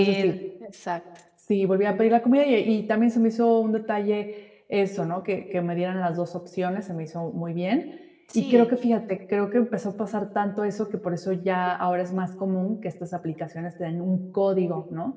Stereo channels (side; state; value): both; identical; correlation 1.00